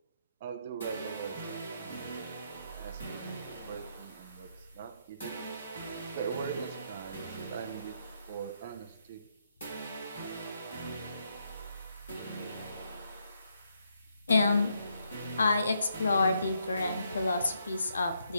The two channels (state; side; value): inverted; both; correlation -0.77